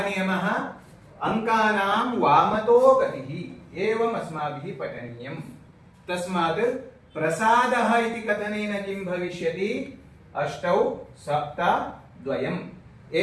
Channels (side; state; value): both; identical; correlation 1.00